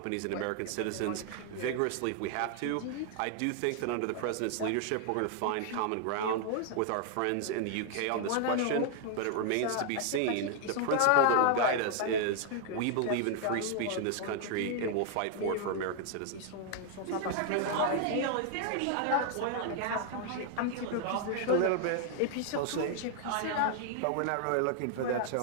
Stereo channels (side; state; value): both; different; correlation 0.00